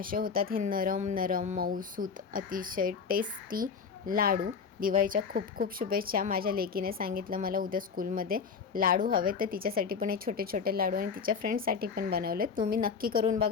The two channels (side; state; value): right; quieter; 5.8 dB